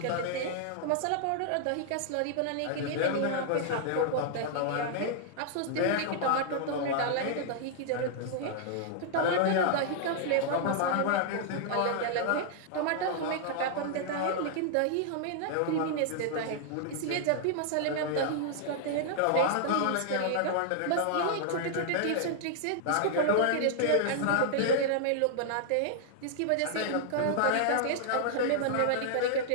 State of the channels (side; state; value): both; different; correlation -0.01